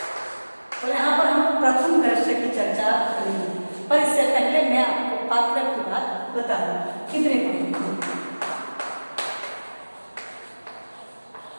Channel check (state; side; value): inverted; both; correlation -1.00